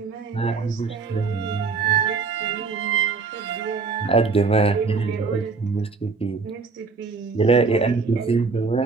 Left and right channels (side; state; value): left; quieter; 4.6 dB